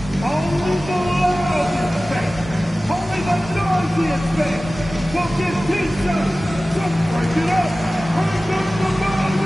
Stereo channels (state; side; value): normal; both; correlation 0.97